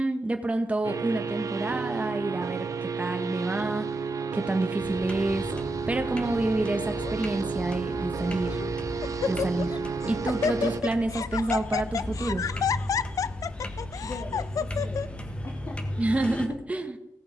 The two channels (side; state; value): both; normal; correlation 0.81